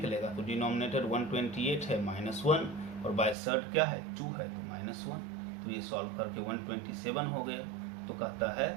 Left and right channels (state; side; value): drops out; left; at 3.4 s